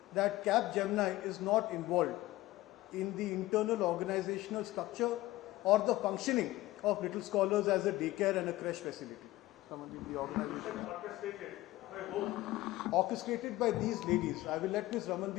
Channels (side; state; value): right; quieter; 17.4 dB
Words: that Capgemini is not involved in the internal organizational structure or the functioning of Little Scholars as a daycare and a creche facility. Ramandeep, the organization. Orchestrated by these ladies. I will let Ms.